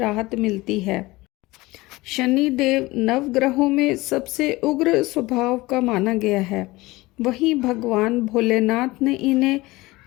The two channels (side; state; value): right; quieter; 20.6 dB